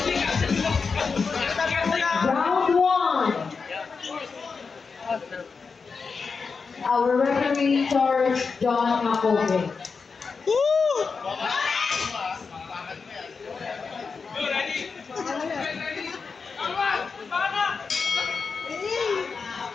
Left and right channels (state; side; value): quieter; right; 5.0 dB